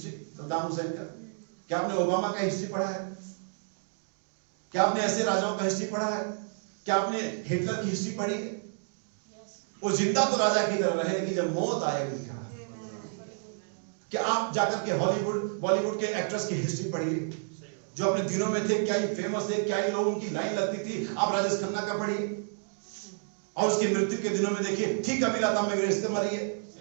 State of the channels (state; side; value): silent; left; digital silence